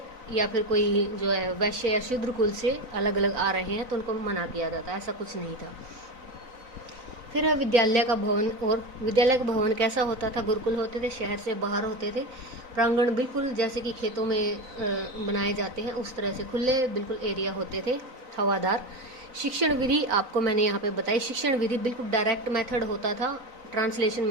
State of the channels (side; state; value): left; late; 4.0 ms